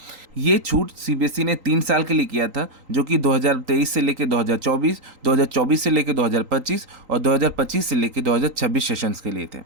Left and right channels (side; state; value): left; late; 3.8 ms